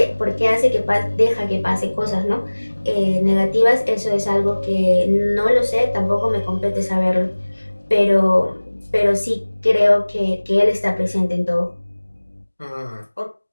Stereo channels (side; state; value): both; inverted; correlation -1.00